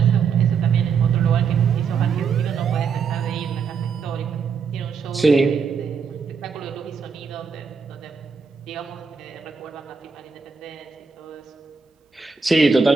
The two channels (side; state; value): left; quieter; 5.7 dB